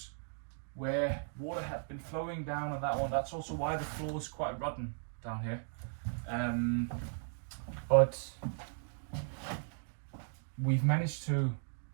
where water had been flowing down on that one. That's also why the floor is quite rotten down here. But we've managed to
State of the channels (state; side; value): silent; left; digital silence